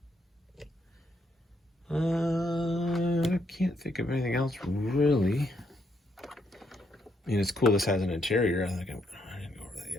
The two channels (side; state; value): both; normal; correlation 0.75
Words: I can't think of anything else really. I mean, it's cool this has an interior. I didn't go over that yet.